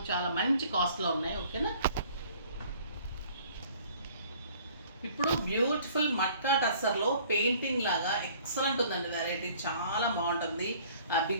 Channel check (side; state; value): both; inverted; correlation -0.55